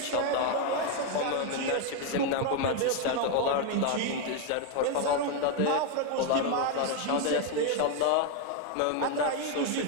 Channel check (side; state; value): both; different; correlation 0.01